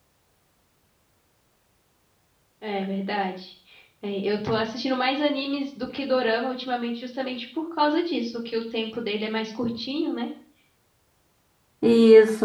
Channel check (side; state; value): both; identical; correlation 1.00